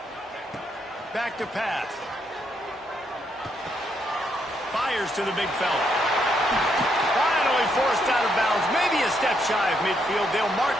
Back to pass. Fires to the big fella. Finally forced out of bounds. Maybe a step shy of midfield. They'll mark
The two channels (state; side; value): normal; both; correlation 0.76